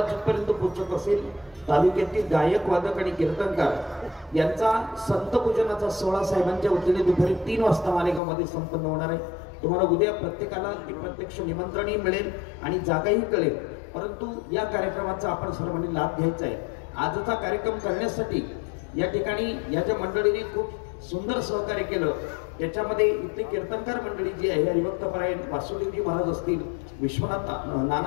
जिथपर्यंत पोहोचत असेल, तालुक्यातील गायक, वादक आणि कीर्तनकार यांचा संत पूजनाचा सोहळा साहेबांच्या वतीने दुपारी 3 वाजता मालेगावमध्ये संपन्न होणार आहे. तुम्हाला उद्या प्रत्येकाला प्रत्यक्ष निमंत्रणही मिळेल आणि जागाही कळेल. परंतु या कार्यक्रमाचा आपण सर्वांनी लाभ घ्यायचा आहे. आजचा कार्यक्रम करण्यासाठी या ठिकाणी या ज्या मंडळीने खूप सुंदर सहकार्य केलं, त्याच्यामध्ये इथली कीर्तनकार मंडळी जी आहे, हरिभक्त परायण वासुदेवजी महाराज असतील, विश्वनाथ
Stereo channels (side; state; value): right; drops out; at 8.2 s